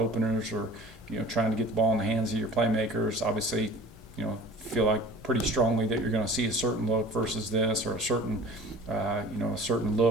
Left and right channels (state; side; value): normal; both; correlation 0.44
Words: or, trying to get the ball in the hands of your playmakers. Obviously, feel like pretty strongly that you're going to see a certain look versus this, or a certain